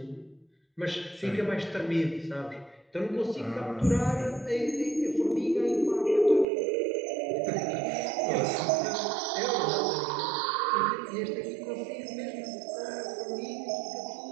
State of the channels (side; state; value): left; drops out; at 6.5 s